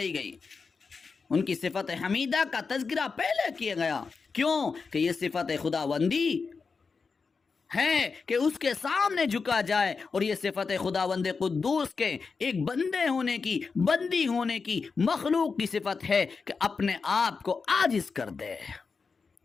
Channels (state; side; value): quieter; right; 4.9 dB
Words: گئی، ان کی صفت حمیدہ کا تذکرہ پہلے کیا گیا۔ کیوں کہ یہ صفت خداوندی ہے کہ اس کے سامنے جھکا جائے، اور یہ صفت خداوند قدوس کے ایک بندے ہونے کی، بندی ہونے کی، مخلوق کی صفت ہے کہ اپنے آپ کو عاجز کر دے۔